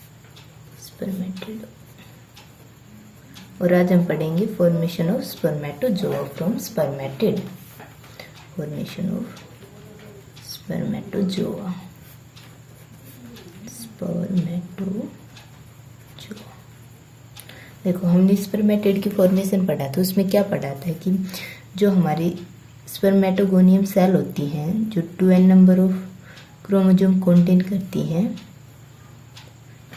और आज हम पढ़ेंगे formation of spermatozoa from spermatid. Formation of spermatozoa. देखो, हमने स्पर्मेटिड की फॉर्मेशन पढ़ा था। उसमें क्या पढ़ा था कि जो हमारी स्पर्मेटोगोनियम सेल होती हैं, जो 2n number of chromosome contain करती हैं,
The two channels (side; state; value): both; identical; correlation 1.00